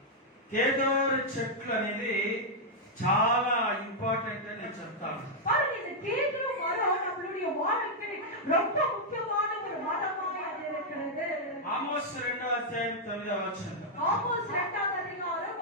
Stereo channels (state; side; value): normal; both; correlation -0.04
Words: కేదోరు చెట్లు అనేది చాలా ఇంపార్టెంట్ అని నేను చెప్తాను. பாருங்க இந்த கேதுரு மரம் நம்மளுடைய வாழ்க்கை ரொம்ப முக்கியமான ஒரு மரமாய் அது இருக்கிறது. ఆమోస్ 2వ అధ్యాయం 9వ వచనం. ஆமோஸ் 2வது அதிகாரம்